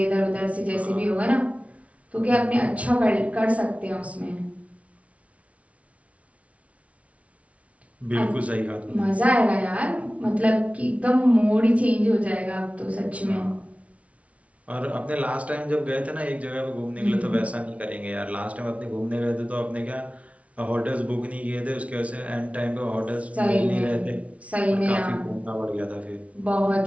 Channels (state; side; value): late; left; 0.065 ms